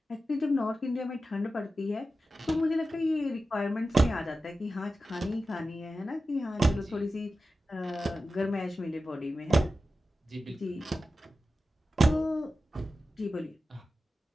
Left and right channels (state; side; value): normal; both; correlation 0.93